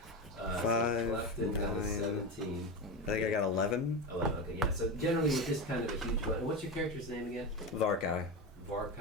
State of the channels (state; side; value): normal; both; correlation 0.19